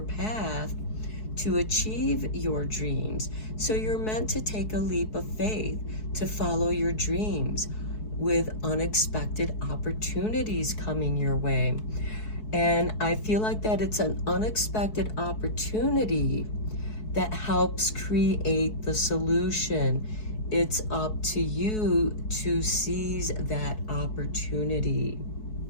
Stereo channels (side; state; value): right; late; 4.7 ms